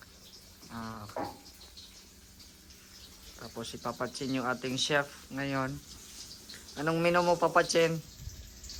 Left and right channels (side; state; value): both; identical; correlation 1.00